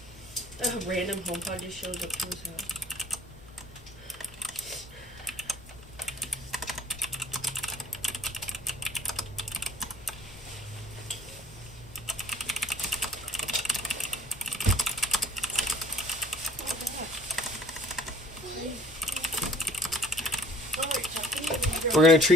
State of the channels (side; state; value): both; normal; correlation 0.55